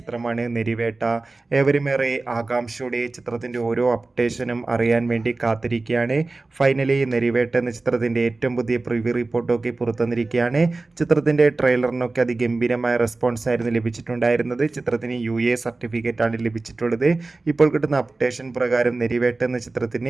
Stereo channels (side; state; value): left; quieter; 3.4 dB